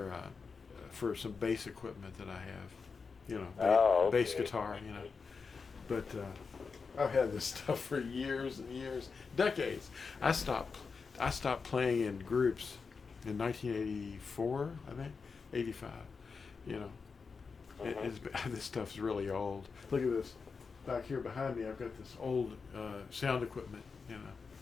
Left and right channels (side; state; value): right; quieter; 5.1 dB